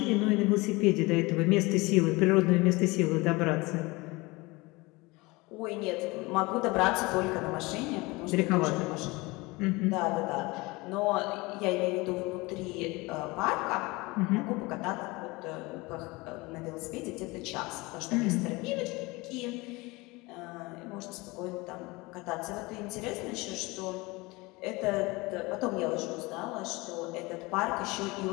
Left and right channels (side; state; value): right; quieter; 23.5 dB